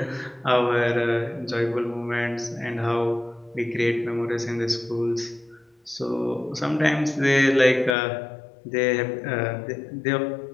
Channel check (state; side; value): drops out; right; at 8.0 s